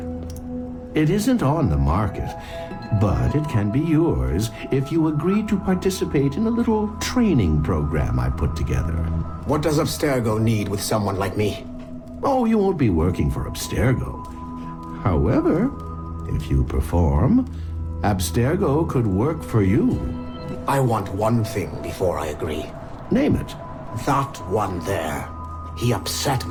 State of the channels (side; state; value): both; identical; correlation 1.00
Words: It isn't on the market, but it can be yours if you agree to participate in a little training program I put together. What does Abstergo need with someone like me? Oh, you won't be working for Abstergo. However, if you perform, Abstergo could work for you. I want one thing before I agree. Name it. That one there. He upset